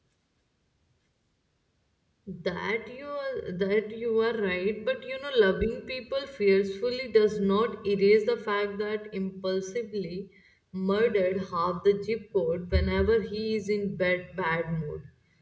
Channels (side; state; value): both; identical; correlation 1.00